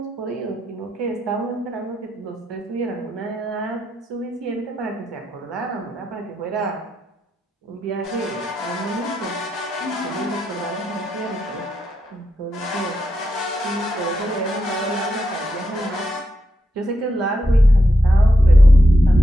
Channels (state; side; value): normal; both; correlation 0.84